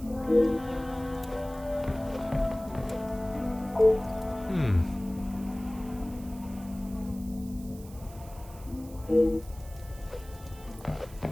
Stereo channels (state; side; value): noise; right; hiss, 21 dB below the sound